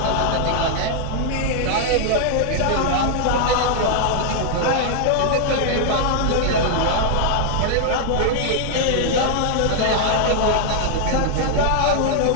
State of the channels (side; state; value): both; different; correlation -0.01